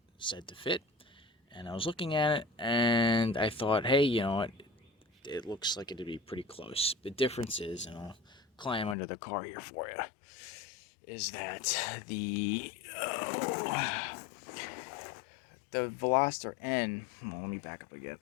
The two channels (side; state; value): right; drops out; at 9.0 s